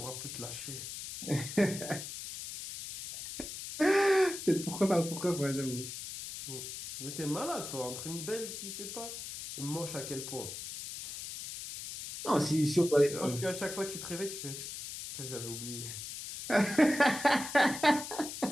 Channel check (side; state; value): left; noise; hiss, 8 dB below the sound